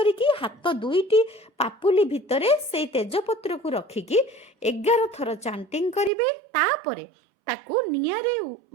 ହାତ 2ଟି ପାପୁଲି ଭିତରେ ସେଇ ତେଜପତ୍ରକୁ ରଖିକି 11 ଥର ଚାଣ୍ଟିଂ କରିବେ। ତାପରେ ତାକୁ ନିଆଁରେ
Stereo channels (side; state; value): left; drops out; at 6.1 s